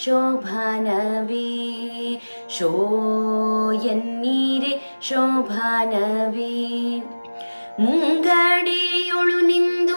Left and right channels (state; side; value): inverted; both; correlation -1.00